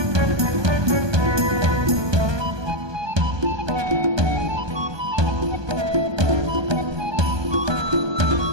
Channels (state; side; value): late; left; 1.2 ms